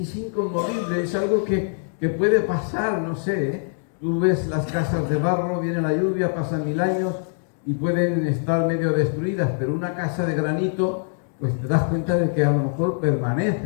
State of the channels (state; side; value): silent; right; digital silence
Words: inconmovible, es algo que puede pasar, no sé. Tú ves las casas de barro, viene la lluvia, pasan 1000 años y pueden estar medio destruidas, pero una casa de granito, pues te das cuenta de que a lo mejor